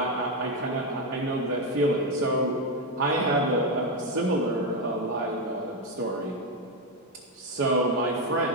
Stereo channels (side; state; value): both; normal; correlation 0.06